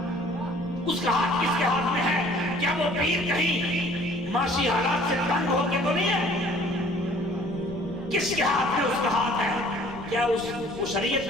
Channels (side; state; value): left; noise; rumble, 18 dB below the sound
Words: اس کا ہاتھ کس کے ہاتھ میں ہے؟ کیا وہ پیر کہیں معاشی حالات سے تنگ ہو کے تو نہیں ہے؟ کس کے ہاتھ میں اس کا ہاتھ ہے؟ کیا وہ